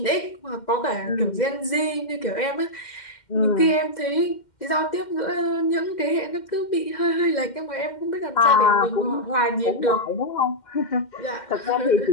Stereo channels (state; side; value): late; right; 2.1 ms